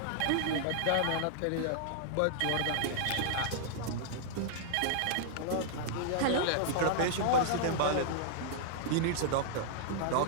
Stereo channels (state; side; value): different; both; correlation -0.01